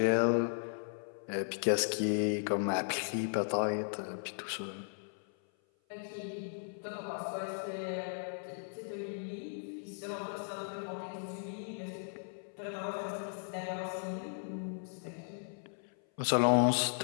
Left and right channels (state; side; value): silent; right; 54 dB below the other